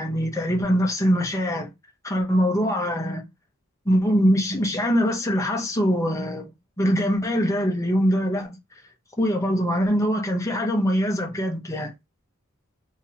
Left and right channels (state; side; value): normal; both; correlation 0.79